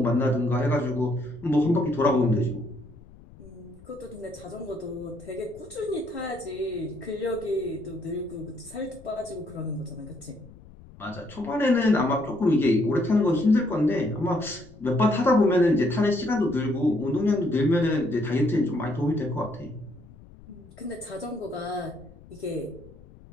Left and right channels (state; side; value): noise; left; rumble, 21 dB below the sound